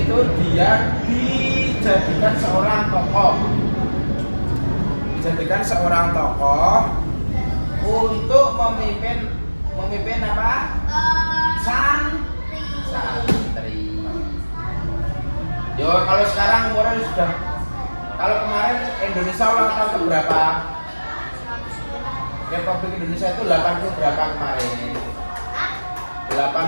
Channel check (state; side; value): inverted; both; correlation -1.00